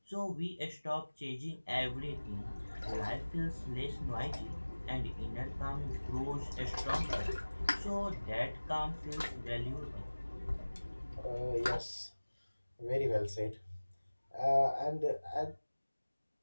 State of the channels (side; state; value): both; inverted; correlation -1.00